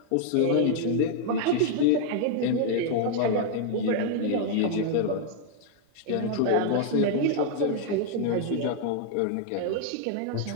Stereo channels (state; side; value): different; both; correlation 0.00